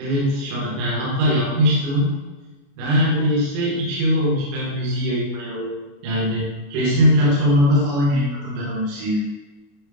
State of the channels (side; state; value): left; late; 29 ms